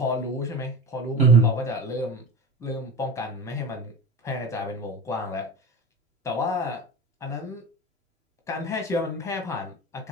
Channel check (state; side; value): normal; both; correlation 0.30